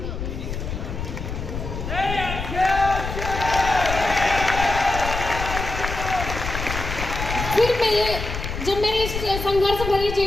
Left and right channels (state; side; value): noise; left; rumble, 6 dB below the sound